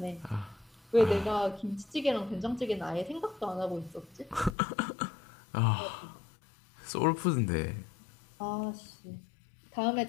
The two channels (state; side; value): drops out; right; at 4.5 s